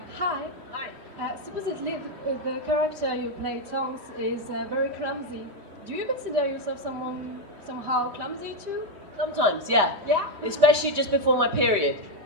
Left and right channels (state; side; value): late; left; 3.1 ms